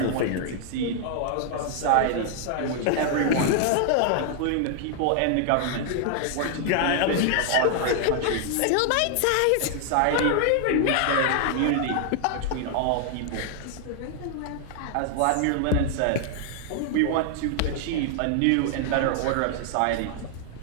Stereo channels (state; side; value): different; both; correlation 0.00